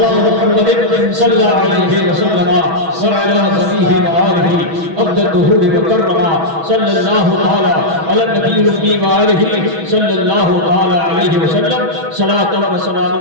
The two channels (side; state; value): left; late; 6.2 ms